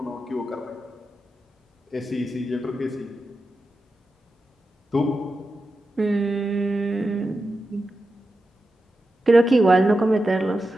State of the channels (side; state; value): both; normal; correlation 0.90